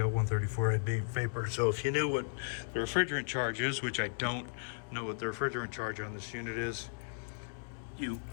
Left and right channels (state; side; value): silent; right; 54 dB below the other